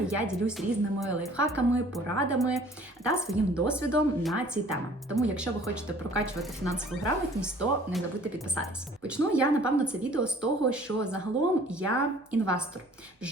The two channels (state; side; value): normal; both; correlation 0.53